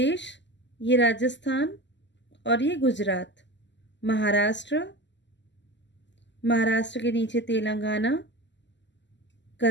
ये राजस्थान, और ये गुजरात। महाराष्ट्र, महाराष्ट्र के नीचे Telangana,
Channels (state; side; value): late; right; 0.53 ms